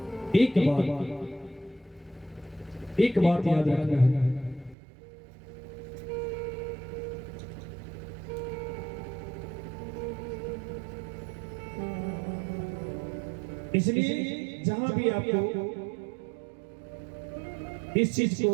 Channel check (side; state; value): left; drops out; at 4.8 s